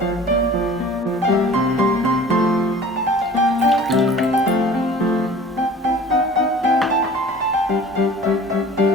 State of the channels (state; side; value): normal; both; correlation 0.45